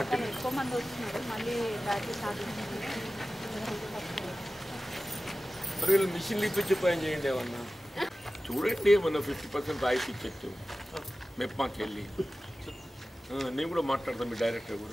ఎక్కువ మంది వస్తున్నారు. మళ్ళీ బ్యాచ్ స్టార్ట్ మరి వీళ్ళు మిషన్లు ఇప్పించి పని చేయండి ఏమన్నా చూడండి. ఏమన్నా 50% రాయితీ ఇచ్చేట్టు మెప్మాకి వెళ్ళి నేను కూడా మాట్లాడతాను మీ డైరెక్టర్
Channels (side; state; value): both; normal; correlation 0.95